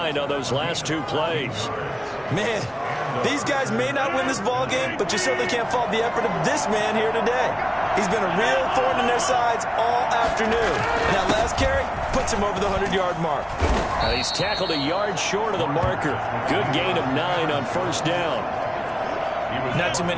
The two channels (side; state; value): both; identical; correlation 1.00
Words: on those last 2 plays. Man, these guys may not win this ball game, but you certainly can't fault the effort of this man here today. He's been a real thorn in their sides all afternoon. And that last carry puts him over the 100-yard mark. He's tackled a yard short of the marker. Good gain of 9 on first down. Not too